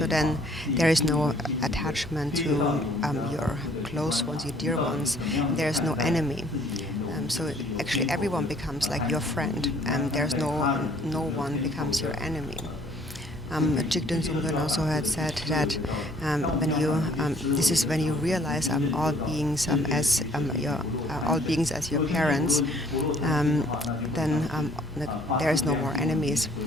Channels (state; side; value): normal; both; correlation 0.60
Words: then there is no attachment to your close ones, your dear ones. There is no enemy. So actually everyone becomes like your friend, and there's no one becomes your enemy. Jigden Sungden also had said that this is when you realize all beings as your parents, then there is no more enemies,